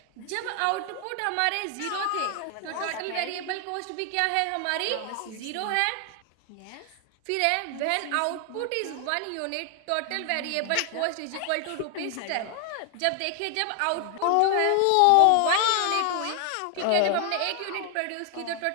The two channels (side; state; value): both; different; correlation 0.00